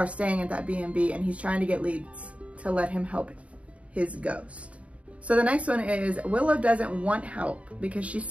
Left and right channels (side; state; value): left; late; 0.065 ms